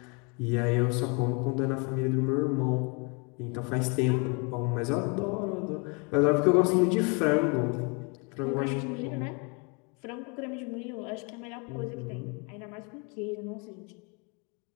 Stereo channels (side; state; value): right; quieter; 32.6 dB